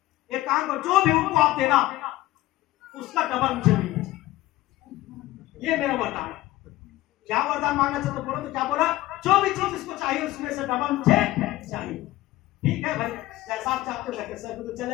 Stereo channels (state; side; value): quieter; right; 16.8 dB